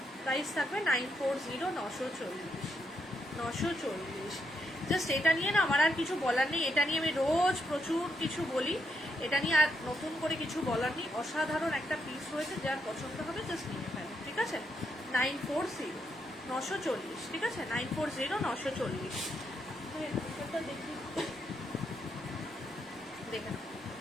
প্রাইস থাকবে 940, 940। জাস্ট এটা নিয়ে না আমার আর কিছু বলার নেই, এটা নিয়ে আমি রোজ প্রচুর কিছু বলি, এটা নিয়ে আর নতুন করে কিছু বলার নেই। অসাধারণ একটা পিস রয়েছে, যার পছন্দ হবে জাস্ট নিয়ে ফেলো, ঠিক আছে। 940, 940, ঠিক আছে। 940, 940। দেখি, দেখে নাও।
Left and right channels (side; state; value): both; normal; correlation 0.80